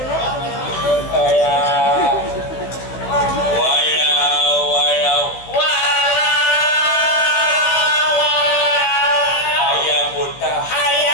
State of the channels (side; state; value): right; late; 15 ms